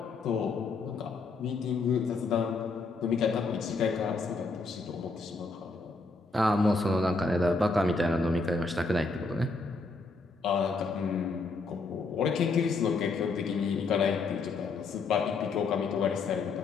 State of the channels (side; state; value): right; quieter; 3.9 dB